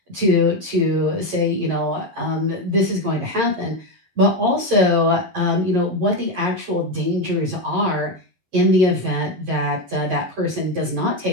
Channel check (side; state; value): left; late; 11 ms